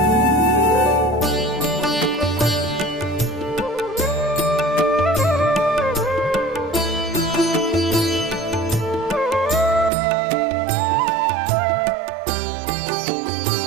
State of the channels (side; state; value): left; drops out; at 9.9 s